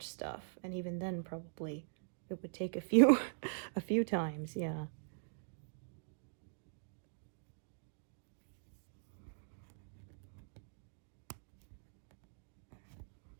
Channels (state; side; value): silent; left; digital silence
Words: stuff, and even then probably it would take a few a few times. Yeah.